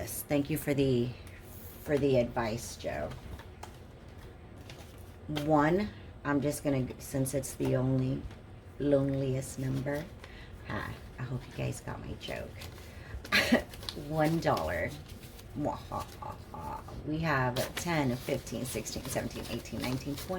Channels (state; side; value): identical; both; correlation 1.00